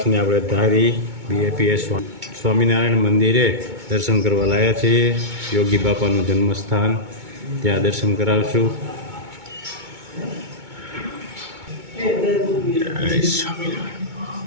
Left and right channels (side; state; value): left; late; 2.2 ms